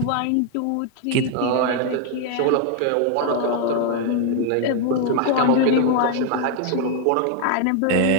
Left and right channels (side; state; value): both; different; correlation 0.00